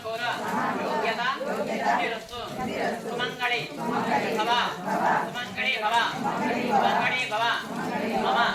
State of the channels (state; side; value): identical; both; correlation 1.00